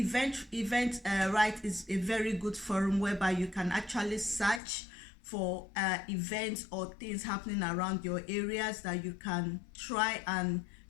is a very good forum whereby you can actually search for events or things happening around your areas that you can try and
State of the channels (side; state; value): right; drops out; at 4.6 s